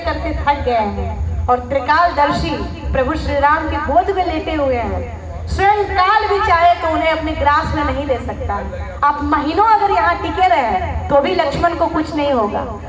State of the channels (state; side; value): identical; both; correlation 1.00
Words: करते थक गए हैं और त्रिकालदर्शी प्रभु श्री राम के गोद में लेटे हुए हैं। स्वयं काल भी चाहे तो उन्हें अपने ग्रास में नहीं ले सकता। आप महीनों अगर यहाँ टिके रहे तो भी लक्ष्मण को कुछ नहीं होगा।